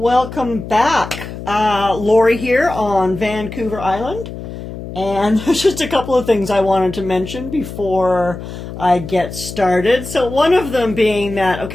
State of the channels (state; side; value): noise; left; hum, 10 dB below the sound